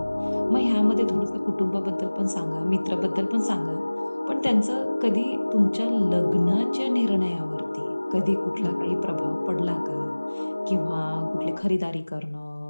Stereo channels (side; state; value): both; inverted; correlation -1.00